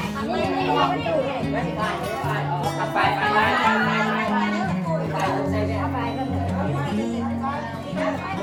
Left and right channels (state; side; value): identical; both; correlation 1.00